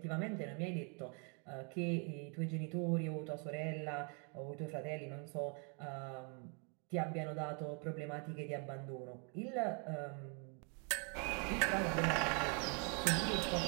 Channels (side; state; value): left; quieter; 36.1 dB